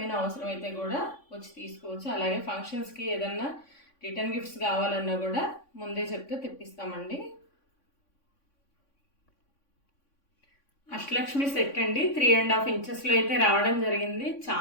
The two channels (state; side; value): late; right; 3.5 ms